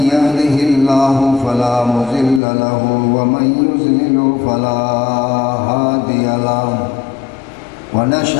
يهده الله فلا مضل له ومن يضلل فلا هادي له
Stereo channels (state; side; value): drops out; right; at 2.4 s